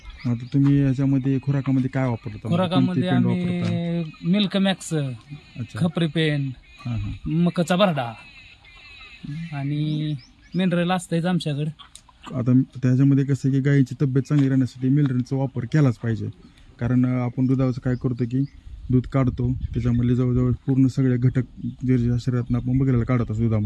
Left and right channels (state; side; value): identical; both; correlation 1.00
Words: आता तुम्ही याच्यामध्ये खुराकामध्ये काय वापरता? खुराकामध्ये आम्ही मिल्क मॅक्स, खपरी पेन, मकाचा भरडा आणि मिनरल असतंच आमच्याकडे. आता त्याच्यामध्ये कसं की गायीची तब्येत चांगली राहण्यासाठी मिनरलचा वापर केलाच पाहिजे. कारण आपण दुधाचं काय करतो की दूध काढतो, त्याच्यामध्ये जवळजवळ पूर्ण सगळे घटक जे शरीरातून आपण बघायला काढत असतो